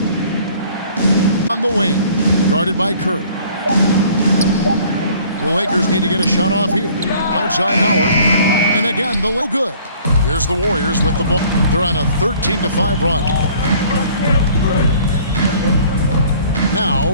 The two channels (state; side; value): inverted; both; correlation -0.54